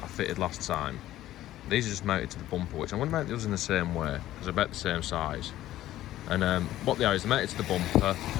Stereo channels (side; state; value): right; quieter; 14.1 dB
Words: I fitted last time, these are just mounted to the bumper, which I'm going to mount those in the same way, because they're about the same size. And what they are is they're mounted to the bumper,